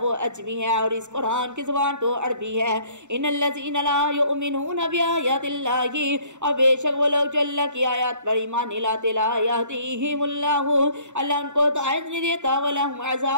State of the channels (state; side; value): late; left; 0.84 ms